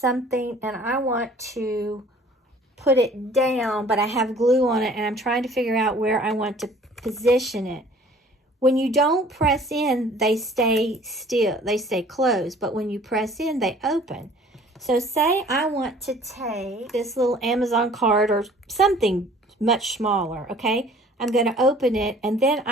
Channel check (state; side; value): normal; both; correlation 0.52